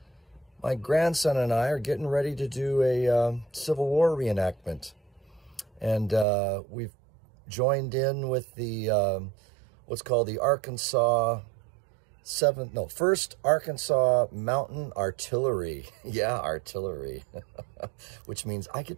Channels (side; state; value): left; drops out; at 6.2 s